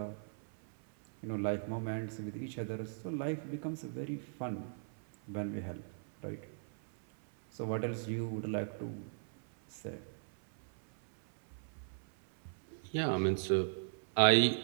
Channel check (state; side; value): silent; left; 52 dB below the other